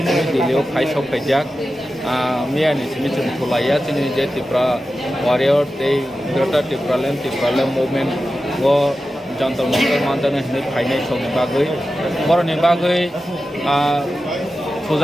ini Delhi High Sokphaikha Mia ni sini cuma Tulaya sini je Tipra warrior day Greater Tipraland movement wo jantan mantan ini High Sokphaikha baru ni bagai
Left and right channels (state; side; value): normal; both; correlation 0.93